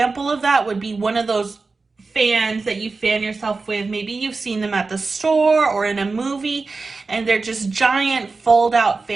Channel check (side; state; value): left; quieter; 4.0 dB